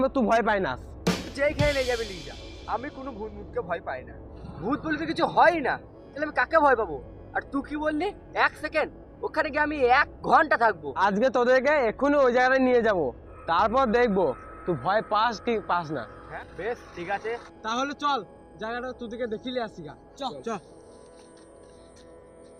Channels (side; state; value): both; identical; correlation 1.00